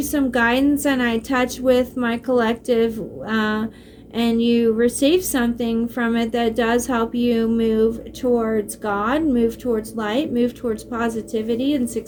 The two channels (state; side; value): identical; both; correlation 1.00